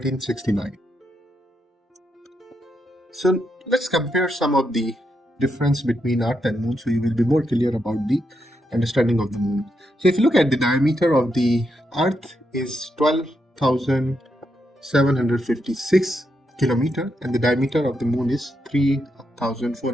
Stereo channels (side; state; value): both; normal; correlation 0.82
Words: So let's compare some of the difference between Earth and Moon so you will be more clear about the understanding of the Moon. So if you look at the diameter of the Earth is 12,756 kilometer and the diameter of the Moon is